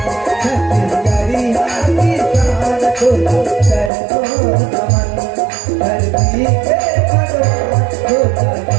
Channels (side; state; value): left; drops out; at 3.9 s